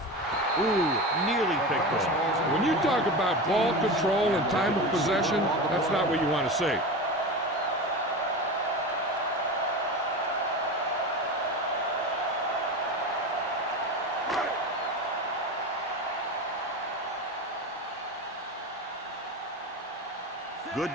Ooh, nearly picked off. When you talk about ball control and time of possession, that's not what you want to see. Good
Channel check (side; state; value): both; normal; correlation 0.26